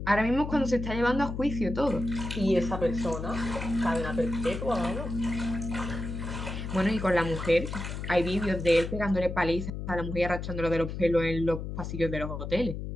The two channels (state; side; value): noise; left; hum, 6 dB below the sound